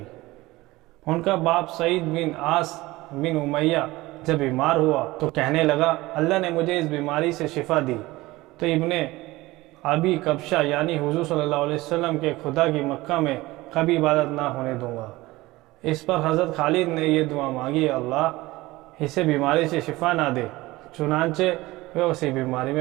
ان کا باپ سعید بن عاص بن امیہ جب بیمار ہوا تو کہنے لگا، اللہ نے مجھے اس بیماری سے شفا دی تو ابن ابی کبشہ یعنی حضور صلی اللہ علیہ وسلم کے خدا کی مکہ میں کبھی عبادت نہ ہونے دوں گا۔ اس پر حضرت خالد نے یہ دعا مانگی، اللہ اسے بیماری سے شفا نہ دے۔ چنانچہ وہ اسی بیماری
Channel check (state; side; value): quieter; left; 19.6 dB